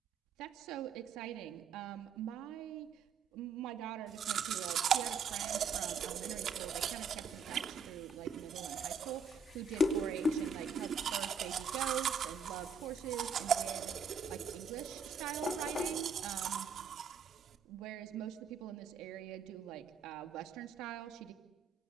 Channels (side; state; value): left; quieter; 5.2 dB